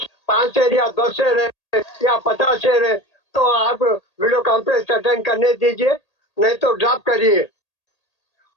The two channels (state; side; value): late; right; 1.8 ms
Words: 5 शेयर या 10 शेयर है या 50 शेयर है तो आप वीडियो कॉन्फ्रेंस अटेंड करने दीजिए, नहीं तो ड्रॉप करिए।